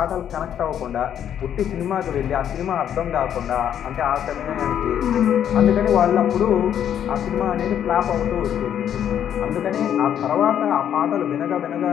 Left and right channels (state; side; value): quieter; right; 9.6 dB